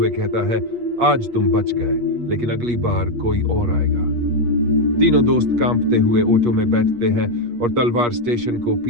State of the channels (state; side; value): late; left; 8.4 ms